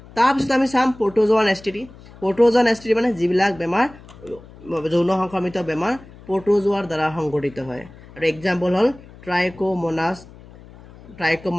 তাৰপিছত আমি চাম প্ৰটোজোৱান STD। প্ৰটোজোৱান STD মানে যিবিলাক বেমাৰ যৌন সংক্ৰমিত বেমাৰ প্ৰটোজোৱাৰ দ্বাৰা সংঘটিত হয়, আৰু এক্সাম্পল হ'ল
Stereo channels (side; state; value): left; noise; hum, 21 dB below the sound